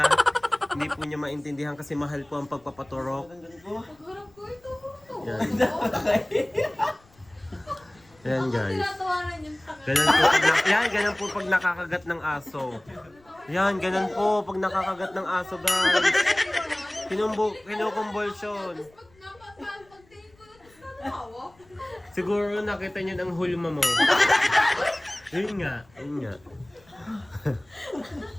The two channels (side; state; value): left; noise; rumble, 30 dB below the sound